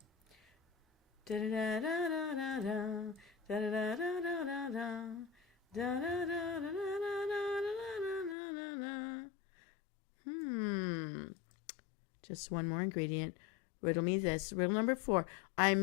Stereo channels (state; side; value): drops out; right; at 8.3 s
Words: Da-da-da-da-da-da. Da-da-da-da-da-da. Just one more ingredient. Riddle me this. Riddle number 4.